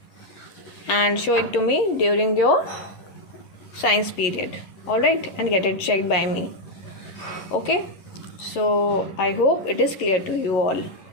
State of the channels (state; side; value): late; right; 11 ms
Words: and show it to me during your science period. Alright. And get it checked by me. Okay. So I hope it is clear to you all.